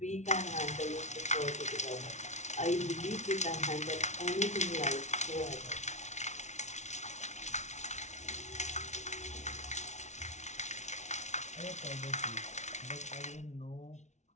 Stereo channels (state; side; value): late; right; 0.33 ms